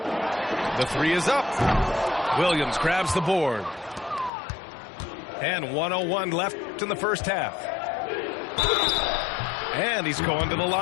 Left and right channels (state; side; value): drops out; right; at 4.3 s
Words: The three is up. Williams grabs the board. And 1:01 left in the first half. And he's going to the